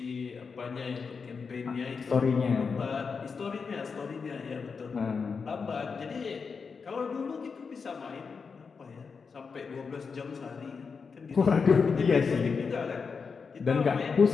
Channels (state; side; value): quieter; right; 5.3 dB